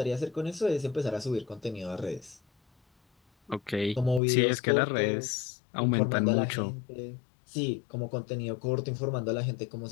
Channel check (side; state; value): right; drops out; at 4.2 s